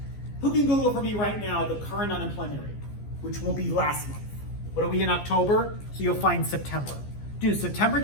Who can Google for me right now the current unemployment rate, which will be last month? What are we in October? So you'll find September. Do September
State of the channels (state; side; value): late; right; 14 ms